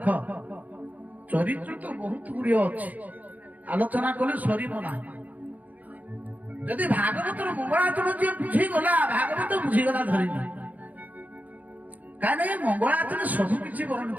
ଚରିତ୍ର ତ ବହୁତ ଗୁଡ଼ିଏ ଅଛି, ଆଲୋଚନା କଲେ ସରିବ ନାହିଁ। ଯଦି ଭାଗବତର ମଙ୍ଗଳାଚରଣ ଯିଏ ବୁଝିଗଲା ଭାଗବତ ବୁଝିଗଲା ଧରିନି। କାହିଁକି ମଙ୍ଗଳାଚରଣ ସବୁ କିଛି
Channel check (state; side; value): late; left; 0.078 ms